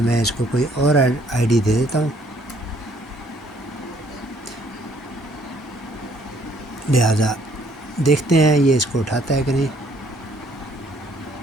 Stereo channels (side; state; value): both; normal; correlation 0.64